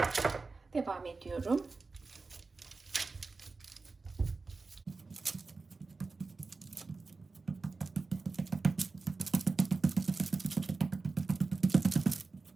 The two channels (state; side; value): quieter; left; 3.9 dB